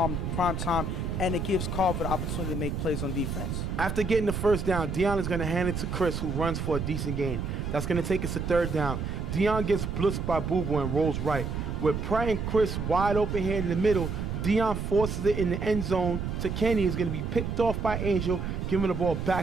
Primetime. And it gives Carver the opportunity to make plays on defense. After getting the first down, Dion is going to hand it to Chris, who runs for a decent gain. That's going to take us to third down. Dion gets blitzed by Boo Boo and rolls right. With Pratt and Chris wide open here in the middle, Dion forces it in the end zone to Kenny. Is going to be picked off by Angel, giving the ball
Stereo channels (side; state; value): right; noise; rumble, 3 dB below the sound